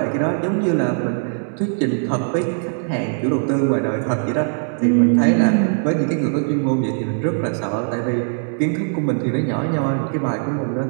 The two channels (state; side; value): silent; left; digital silence